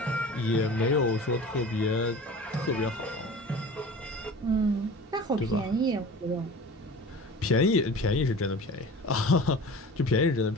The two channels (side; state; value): both; normal; correlation 0.39